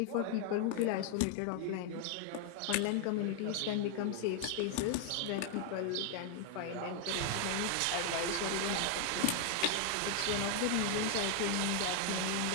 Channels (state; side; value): different; both; correlation 0.00